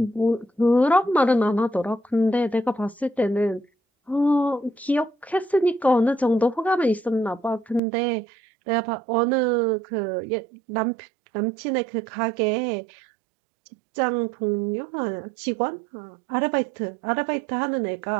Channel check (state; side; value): drops out; left; at 7.8 s